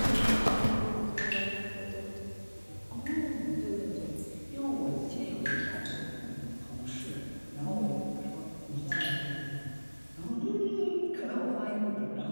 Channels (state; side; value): inverted; both; correlation -1.00